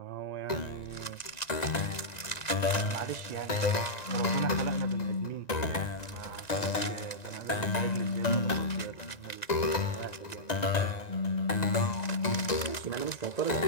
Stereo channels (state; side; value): late; right; 1.9 ms